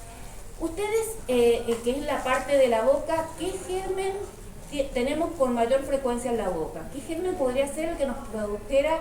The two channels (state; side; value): identical; both; correlation 1.00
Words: Ustedes, que es la parte de la boca, ¿qué germen tenemos con mayor frecuencia en la boca? ¿Qué germen podría ser el que nos produjera